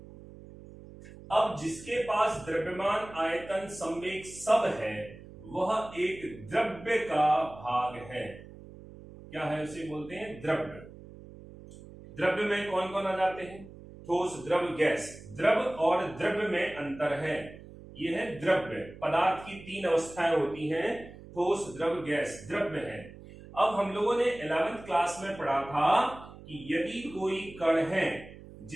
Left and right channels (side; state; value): right; noise; hum, 17 dB below the sound